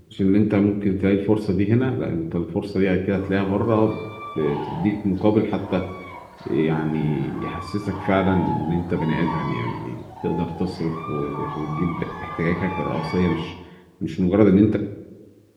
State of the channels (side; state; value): both; identical; correlation 1.00